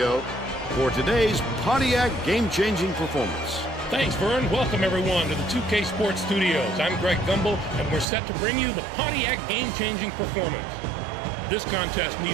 for today's Pontiac game-changing performance. Thanks, Vern. Welcome, everyone, to the 2K Sports Studios. I'm Greg Gumbel, and we're set to bring you the Pontiac game-changing performance. This contest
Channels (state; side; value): drops out; left; at 8.1 s